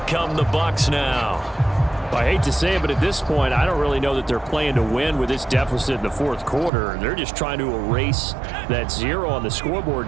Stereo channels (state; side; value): drops out; left; at 6.7 s